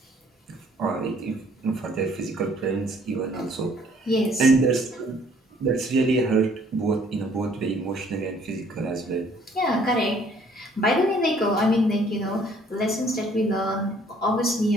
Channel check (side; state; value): both; normal; correlation 0.60